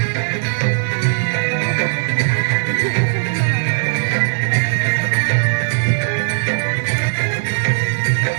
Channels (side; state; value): left; silent; digital silence